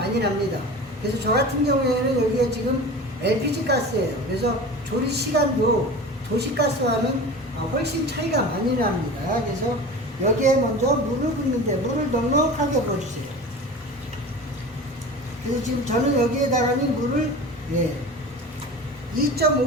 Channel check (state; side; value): normal; both; correlation 0.34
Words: 납니다. 그래서 저 같은 경우에는 여기가 지금 LPG 가스예요. 그래서 조리 시간도 도시가스와는 훨씬 차이가 많이 납니다. 그래서 여기에 먼저 물을 붓는데 물을 넉넉하게 부어주세요. 그래서 지금 저는 여기에다가는 물을